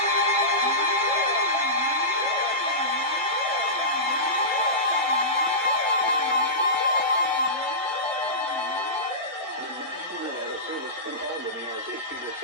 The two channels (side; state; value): both; normal; correlation -0.18